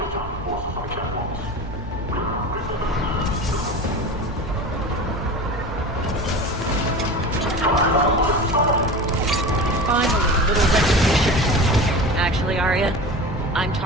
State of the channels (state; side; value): normal; both; correlation 0.32